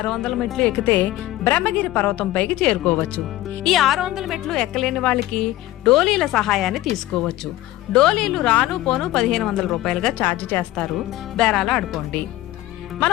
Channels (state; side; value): quieter; right; 16.0 dB